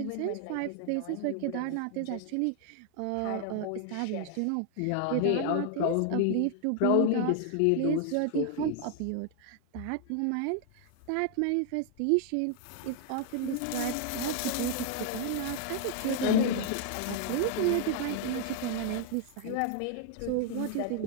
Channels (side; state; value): both; different; correlation 0.00